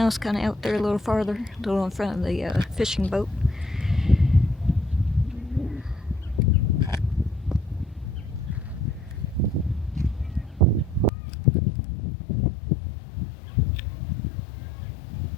kind of out there a little farther, a little in front of the fishing boat.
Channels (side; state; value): right; drops out; at 11.1 s